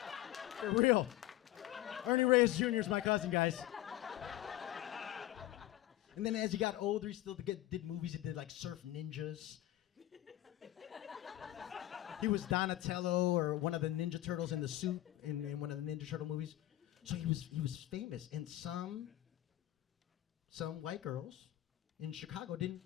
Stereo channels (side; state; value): right; quieter; 14.9 dB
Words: For real. Ernie Reyes Jr. is my cousin, guys. And then as he got older, he still did movies. He did like Surf Ninjas. He was Donatello or one of the Ninja Turtles in the suit in one of the Ninja Turtle movies. So he was famous. And some white girls in Chicago they